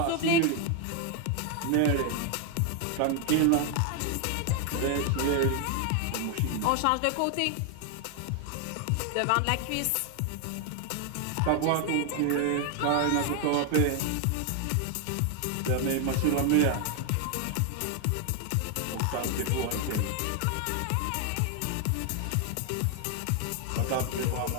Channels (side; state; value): both; different; correlation 0.00